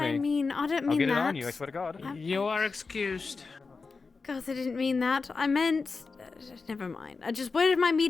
me. I mean. I don't mean I'll get that. it on you. I swear to God. You are excused. God, I didn't mean that. I meant. Never mind. I just. Where am I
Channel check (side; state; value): right; quieter; 4.4 dB